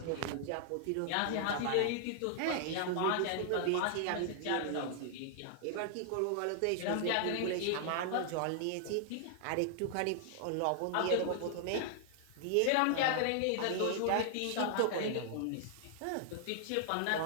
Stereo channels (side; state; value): both; different; correlation 0.00